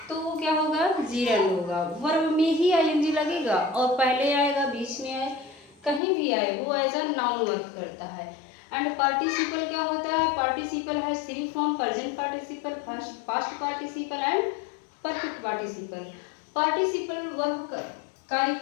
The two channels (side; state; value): right; drops out; at 6.0 s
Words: तो वो क्या होगा? जीरेंड होगा। वर्ब में ही आईएनजी लगेगा और पहले आएगा, बीच में आए, कहीं भी आए वो एज अ नाउन वर्क करता है। एंड पार्टिसिपल क्या होता है? पार्टिसिपल है three form: present participle, past participle and perfect participle. Participle verb कार्य